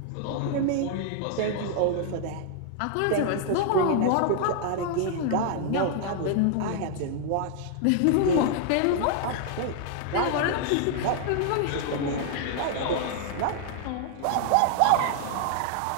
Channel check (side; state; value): both; different; correlation 0.00